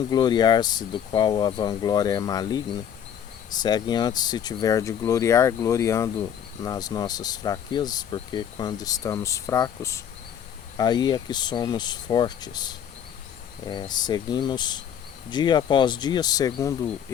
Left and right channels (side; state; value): right; quieter; 8.9 dB